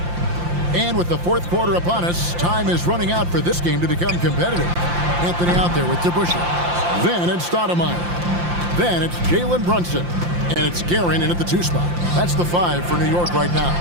And with the 4th quarter upon us, time is running out for this game to become competitive. Anthony out there with DeBusschere. Then it's Stoudemire. Then it's Jalen Brunson. And it's Guerin in at the 2 spot. That's the 5 for New York right now.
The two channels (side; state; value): left; late; 5.7 ms